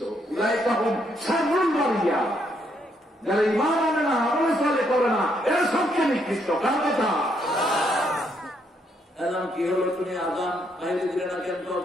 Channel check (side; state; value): both; normal; correlation 0.74